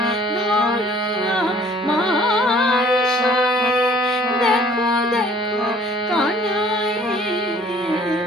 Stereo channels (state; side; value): normal; both; correlation 0.55